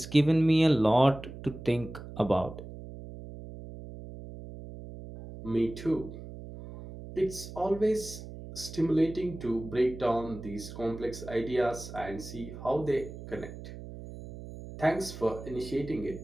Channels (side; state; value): right; noise; hum, 13 dB below the sound